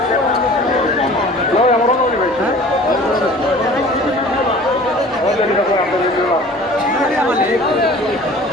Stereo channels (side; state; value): both; normal; correlation 0.45